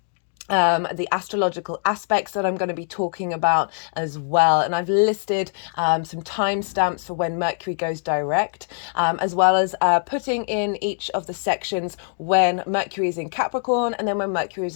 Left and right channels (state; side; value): silent; right; digital silence